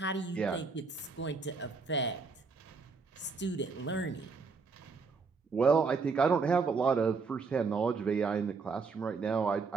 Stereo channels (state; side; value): quieter; left; 4.7 dB